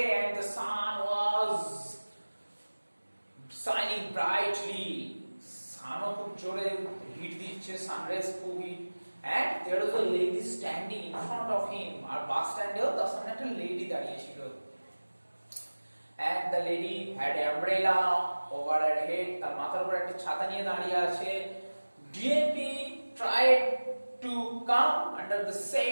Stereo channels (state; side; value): inverted; both; correlation -1.00